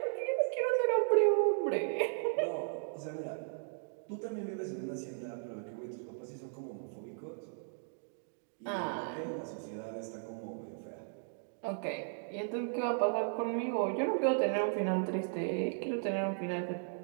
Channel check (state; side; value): silent; left; digital silence